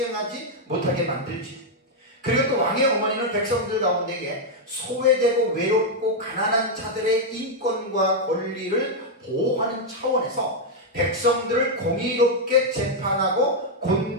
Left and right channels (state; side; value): normal; both; correlation -0.01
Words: 못하게 만들지. 그리고 또 왕의 어머니는 백성들 가운데에 소외되고 외롭고 가난한 자들의 인권과 권리를 보호하는 차원에서 백성들을 공의롭게 재판하고